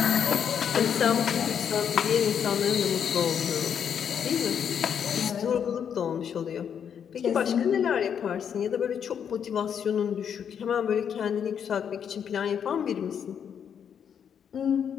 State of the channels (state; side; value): quieter; right; 8.0 dB